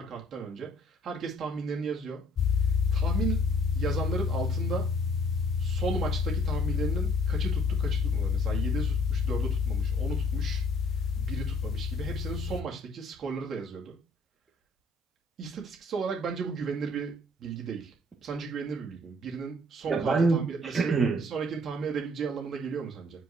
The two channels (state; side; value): normal; both; correlation 0.59